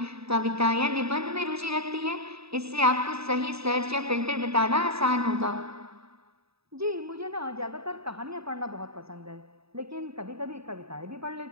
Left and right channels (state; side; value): late; left; 0.77 ms